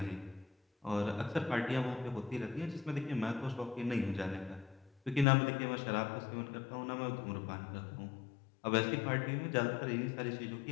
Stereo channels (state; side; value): drops out; right; at 5.2 s